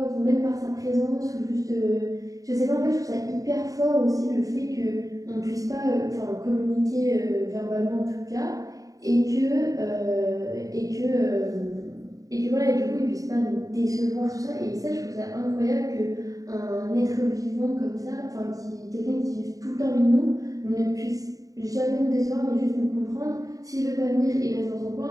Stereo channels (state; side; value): late; left; 0.17 ms